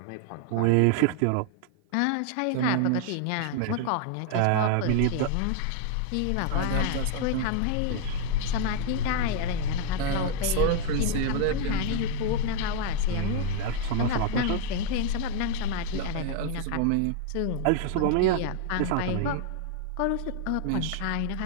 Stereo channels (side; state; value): both; different; correlation 0.00